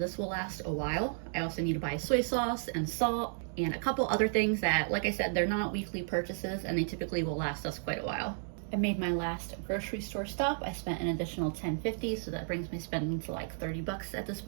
will last a while. I also need to buy soy sauce and salt and a couple other things that, like I said, they're not weekly purchases and they typically will last us quite a while. I made my last grocery store stop. I spent an additional $10.50, so that brings my spending to like $30 at this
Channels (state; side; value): silent; left; digital silence